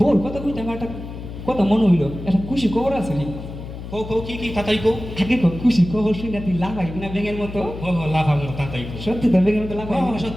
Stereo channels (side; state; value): left; noise; hum, 10 dB below the sound